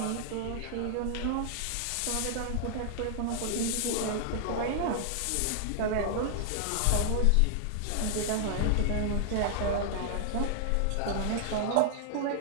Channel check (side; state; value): both; different; correlation -0.01